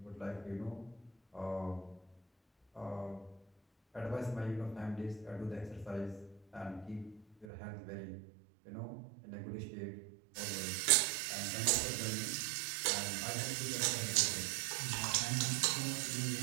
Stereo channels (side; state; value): left; drops out; at 7.5 s